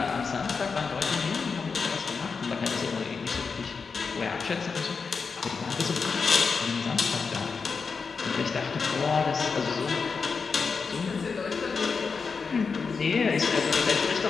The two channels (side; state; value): right; quieter; 5.1 dB